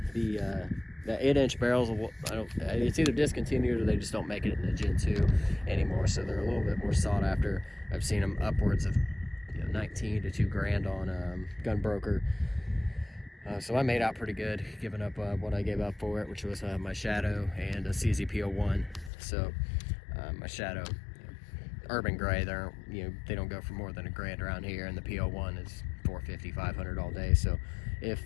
The 8-inch barrels, it's either discontinued or they just don't make it in the Gen 2 anymore, so they're a little bit more sought after. I've seen them upwards of 19 to $2 grand on Gunbroker. So I made out pretty good, giving up what I gave up for it, which was my Shadow and a CZ-P01. So my Shadow, urban gray, they don't go for more than $1 grand around here, and the P01 is $450, $500 all day. So if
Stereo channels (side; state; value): right; drops out; at 19.1 s